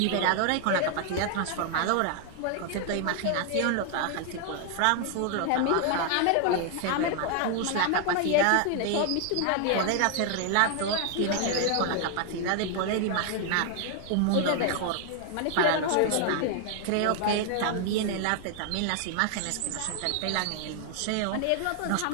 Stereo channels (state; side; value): different; both; correlation 0.00